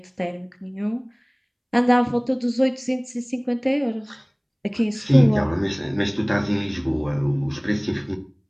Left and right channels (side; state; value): both; identical; correlation 1.00